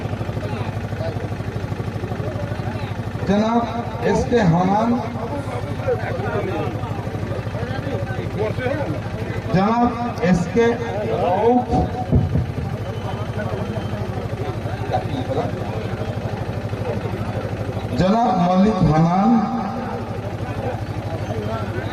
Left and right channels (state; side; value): identical; both; correlation 1.00